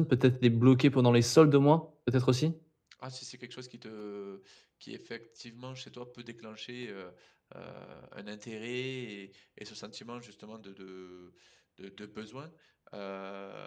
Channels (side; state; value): both; identical; correlation 1.00